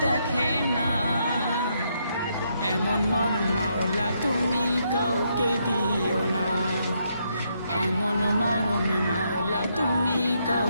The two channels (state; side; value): inverted; both; correlation -0.76